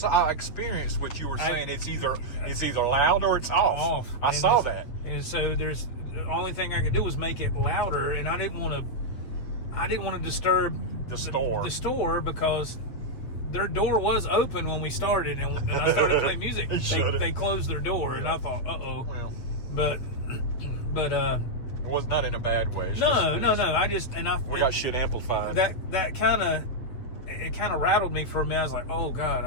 experienced what you were saying. It's either loud or it's off. I saw that. And so the only thing I could do was make it louder, and I didn't want to disturb the store because their door was open when we started, and I started playing music. They closed their door, and I thought, well, but it was not in a bad way. No. We got shit amplified. That kind of rattled me for a minute. I was like, oh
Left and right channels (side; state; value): right; late; 8.5 ms